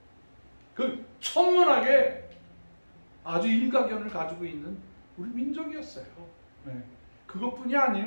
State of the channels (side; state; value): both; inverted; correlation -1.00